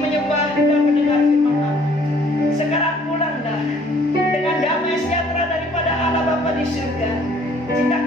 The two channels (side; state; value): both; normal; correlation 0.59